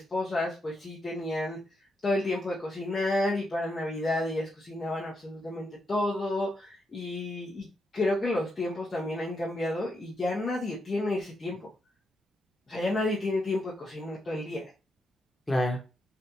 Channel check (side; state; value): both; normal; correlation 0.82